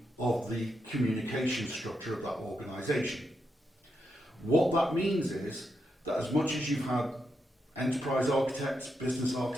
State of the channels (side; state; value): both; normal; correlation 0.83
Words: of the communication structure of that organisation. What that means is that as much as you've had enterprise architects, business